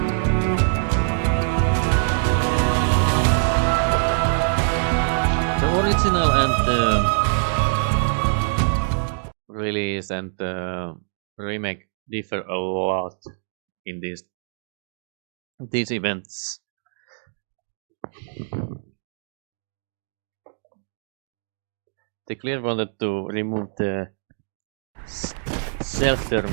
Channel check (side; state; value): left; silent; digital silence